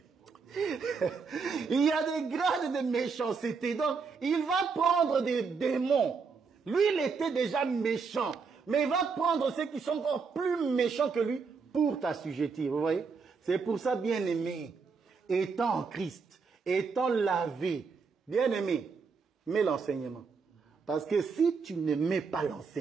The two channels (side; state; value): left; quieter; 5.1 dB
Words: Il y a des grades de méchanceté. Donc, il va prendre des démons. Lui, il était déjà méchant. Mais il va prendre ceux qui sont encore plus méchants que lui pour t'assujettir. Vous voyez? C'est pour ça, bien-aimé, étant en Christ, étant lavé, bien-aimé, mets l'enseignement. Parce que si tu ne mets pas